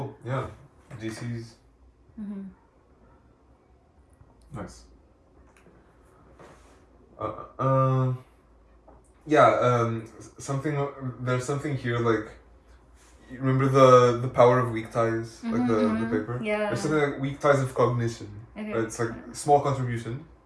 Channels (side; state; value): both; identical; correlation 1.00